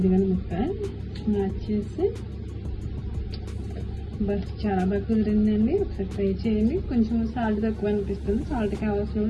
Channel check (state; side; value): identical; both; correlation 1.00